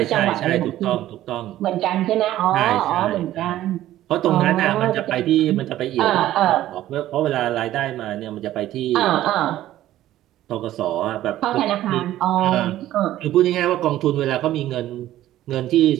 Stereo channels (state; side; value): quieter; left; 13.8 dB